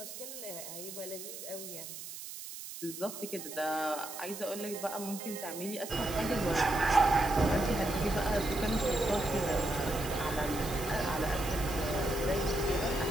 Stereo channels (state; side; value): noise; right; hiss, 10 dB below the sound